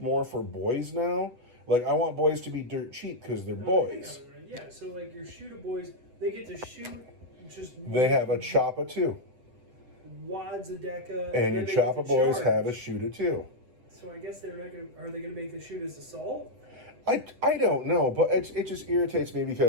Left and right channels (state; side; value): late; left; 8.0 ms